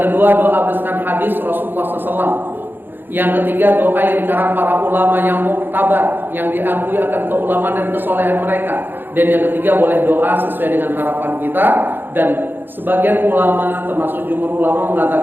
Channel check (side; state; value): left; late; 0.096 ms